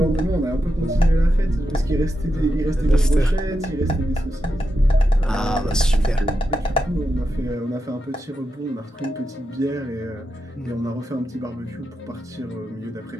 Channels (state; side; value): normal; both; correlation 0.87